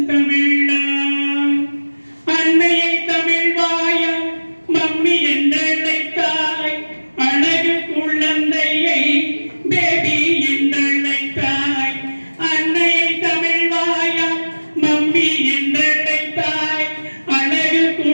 தமிழா, அன்னையை தமிழ் வாயா மம்மி என்றழைத்தாய், அழகு குழந்தையை பேபி என்றழைத்தாய், அன்னையை தமிழ் வாயா மம்மி என்றழைத்தாய், அழகு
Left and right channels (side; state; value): both; inverted; correlation -1.00